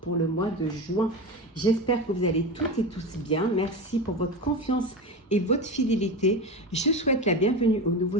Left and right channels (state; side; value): normal; both; correlation 0.23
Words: pour le mois de juin. J'espère que vous allez toutes et tous bien. Merci pour votre confiance et votre fidélité. Je souhaite la bienvenue aux